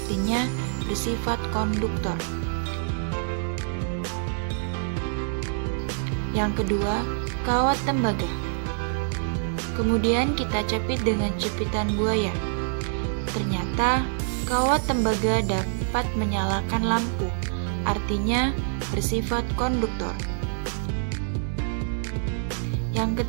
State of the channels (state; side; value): silent; left; 57 dB below the other